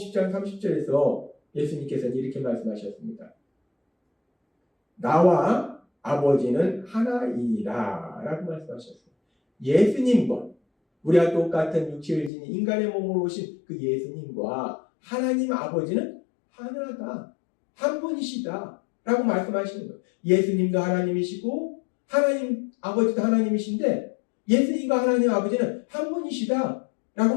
30절에서 예수님께서는 이렇게 말씀하셨습니다. 나와 아버지는 하나이니라 라고 말씀하셨어요. 예수님과 우리와 똑같은 육체를 지닌 인간의 몸으로 오신 그 예수님과 하나님 아버지는 하나다. 한 분이시다. 라고 말씀하시는 거예요. 예수님도 하나님이시고 하나님 아버지도 하나님이신데 예수님과 하나님 아버지는 한 분이시다. 라고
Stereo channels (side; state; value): right; drops out; at 12.3 s